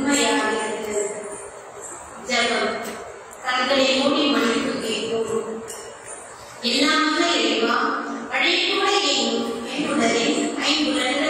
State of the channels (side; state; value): both; identical; correlation 1.00